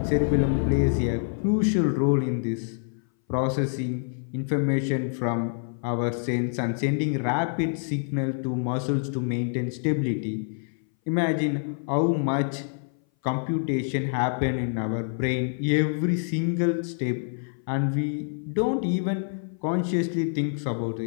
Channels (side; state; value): right; silent; 58 dB below the other